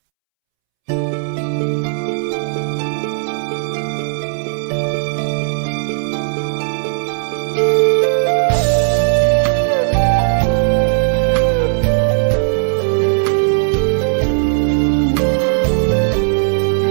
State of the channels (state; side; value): silent; left; 69 dB below the other